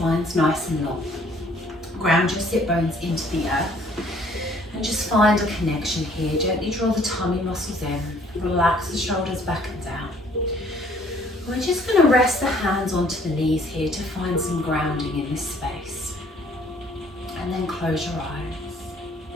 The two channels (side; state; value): both; normal; correlation 0.60